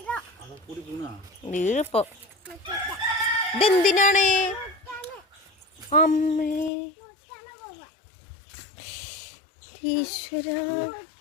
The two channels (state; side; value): drops out; right; at 6.7 s